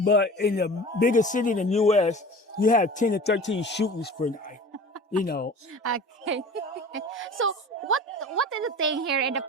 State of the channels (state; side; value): normal; both; correlation 0.39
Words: in the bigger city in the U.S., you have 10 to 13 shootings per night, you know. Okay. So what is the thing here in the